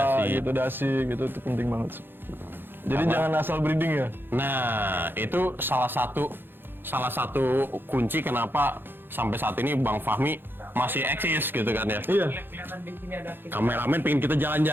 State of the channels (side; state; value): left; late; 0.10 ms